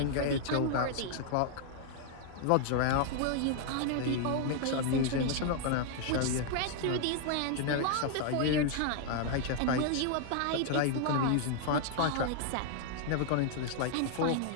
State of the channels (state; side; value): different; both; correlation 0.00